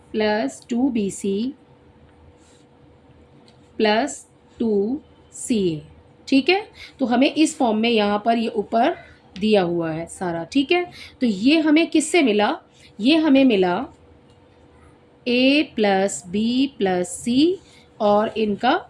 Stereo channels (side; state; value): both; identical; correlation 1.00